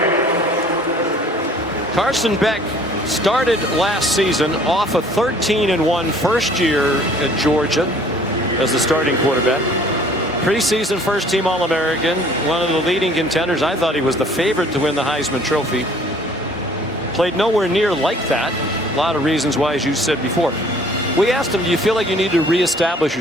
Carson Beck started last season off a 13-1 first year at Georgia as the starting quarterback. Preseason first-team All-American, one of the leading contenders. I thought he was the favorite to win the Heisman Trophy. Played nowhere near like that. A lot of reasons why, as you said before. We asked him, do you feel like you need to reestablish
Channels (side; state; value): both; normal; correlation 0.54